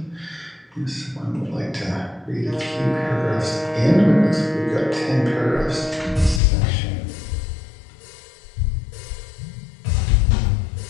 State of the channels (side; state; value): right; drops out; at 6.4 s